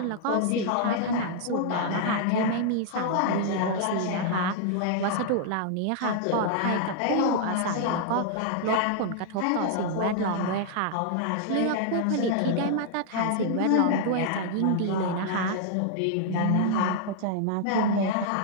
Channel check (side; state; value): both; different; correlation -0.01